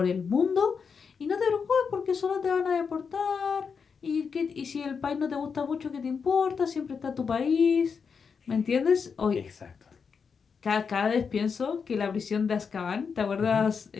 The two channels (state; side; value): quieter; right; 5.9 dB